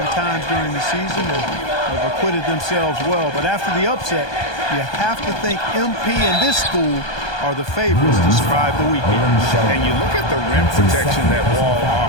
times during the season and have acquitted themselves well. But after the upset, you have to think MP and this school are the favorites to survive the weekend. And you look at the rim protection that Wall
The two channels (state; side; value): late; right; 1.2 ms